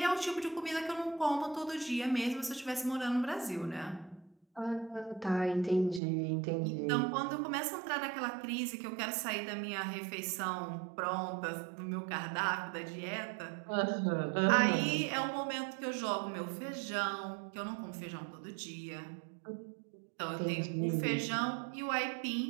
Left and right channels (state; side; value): drops out; left; at 6.0 s